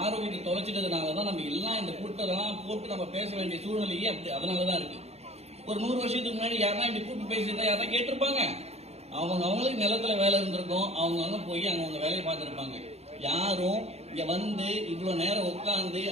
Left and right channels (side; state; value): left; late; 0.31 ms